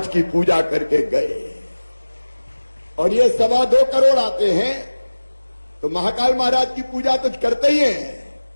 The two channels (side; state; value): both; inverted; correlation -1.00